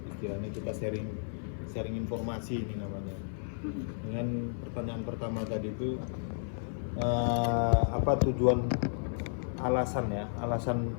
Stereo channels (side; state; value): right; silent; 56 dB below the other